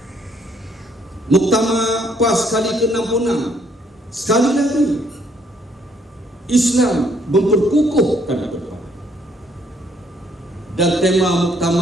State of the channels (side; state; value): both; normal; correlation 0.67